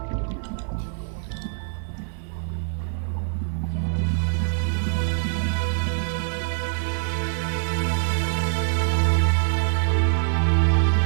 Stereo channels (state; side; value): silent; left; 62 dB below the other